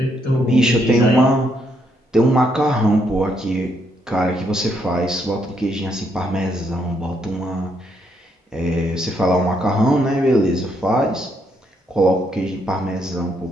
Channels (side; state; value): both; normal; correlation 0.75